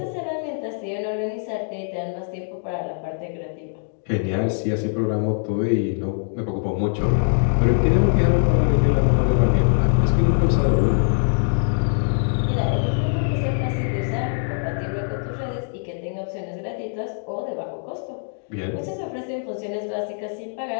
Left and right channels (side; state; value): right; silent; digital silence